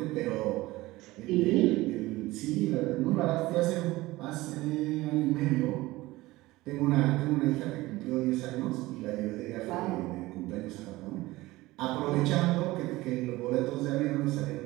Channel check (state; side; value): quieter; left; 19.1 dB